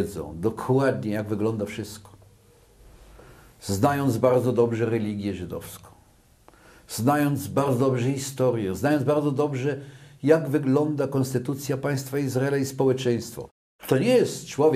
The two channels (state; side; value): identical; both; correlation 1.00